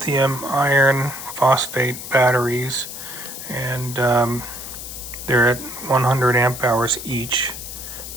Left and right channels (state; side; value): noise; left; hiss, 10 dB below the sound